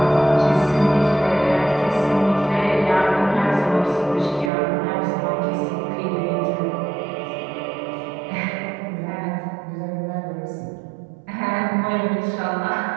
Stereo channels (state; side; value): drops out; left; at 4.5 s